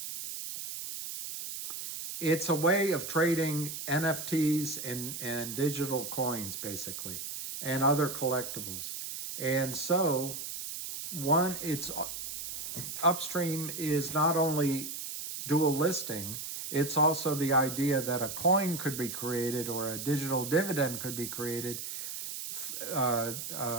it's a way of trading NFTs and digital coins, basically, and other collectibles. And so, Upstream is not only dual listing, it's also the idea that a coin could be created or a digital dividend could be created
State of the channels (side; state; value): right; noise; hiss, 7 dB below the sound